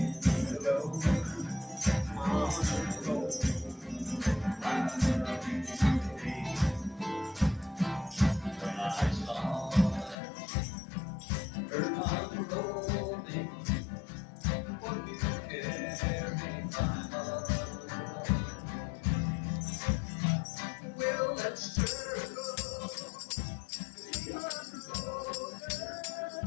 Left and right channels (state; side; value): drops out; right; at 10.2 s